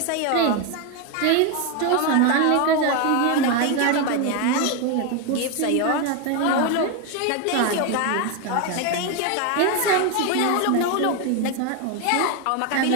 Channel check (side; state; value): both; different; correlation 0.02